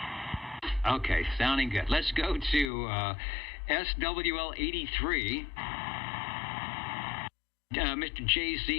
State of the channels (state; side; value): drops out; right; at 2.7 s